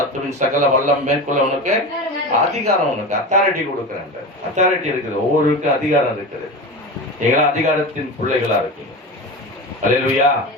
சகல வல்லம் மேற்கொள்ள உனக்கு அதிகாரம், உனக்கு அத்தாரிட்டி கொடுக்கிறேன். அத்தாரிட்டி இருக்குது, ஒவ்வொருக்கும் அதிகாரம் இருக்குது. நீங்களா அதிகாரத்தின் பிள்ளைகளா இருக்கீங்க. அல்லேலூயா.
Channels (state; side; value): normal; both; correlation 0.26